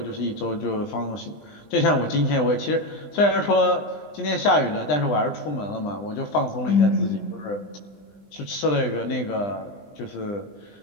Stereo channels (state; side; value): late; right; 20 ms